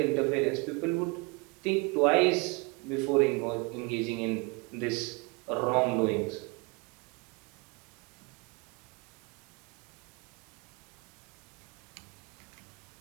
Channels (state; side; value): quieter; left; 28.8 dB